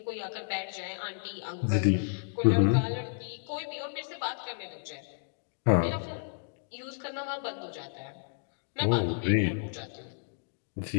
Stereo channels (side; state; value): right; silent; digital silence